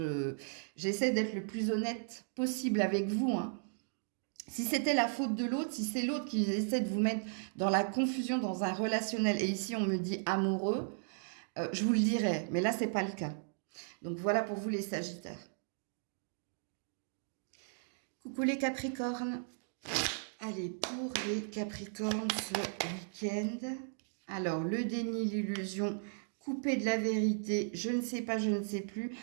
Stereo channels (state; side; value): silent; left; digital silence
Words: j'essaie d'être le plus honnête possible avec vous, hein. Si c'était la faute de l'autre, si c'est l'autre qui essaie de vous mettre dans la confusion, dans un relationnel, et ici on me dit amoureux, je vous le dirais, mais là c'est pas le cas. Donc voilà pour vous les Sagittaires. Coucou les Capricornes. Allez, pour les Capricornes ce week-end... Alors, le déni, l'illusion, couper de la vérité, je ne sais pas, je ne sais plus.